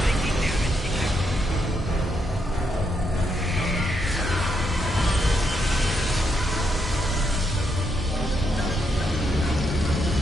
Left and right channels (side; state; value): both; normal; correlation 0.79